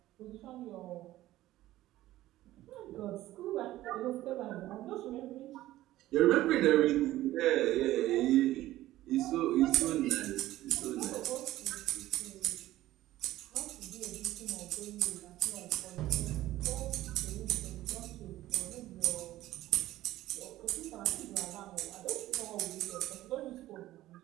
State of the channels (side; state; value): left; quieter; 15.4 dB